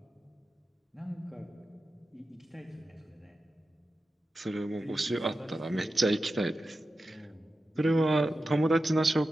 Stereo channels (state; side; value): normal; both; correlation 0.92